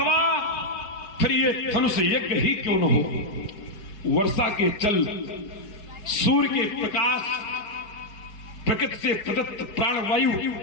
फिर ये धनुष यज्ञ ही क्यों न हो, वर्षा के जल, सूर्य के प्रकाश, प्रकृति से प्रदत्त प्राणवायु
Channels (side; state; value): right; late; 4.8 ms